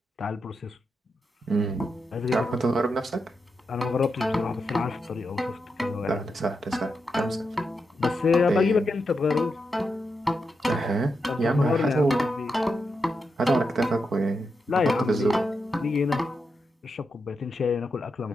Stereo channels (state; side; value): normal; both; correlation 0.85